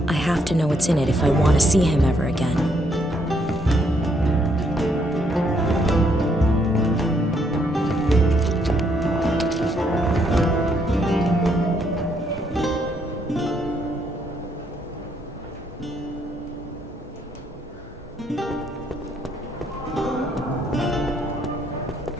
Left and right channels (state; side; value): normal; both; correlation 0.72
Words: I have to know what's in it if I want to see him ever again.